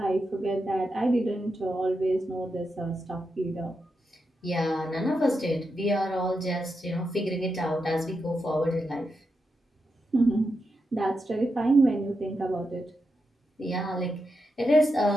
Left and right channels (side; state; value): both; normal; correlation 0.86